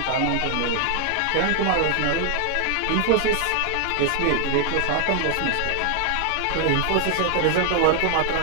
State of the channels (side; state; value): both; different; correlation 0.00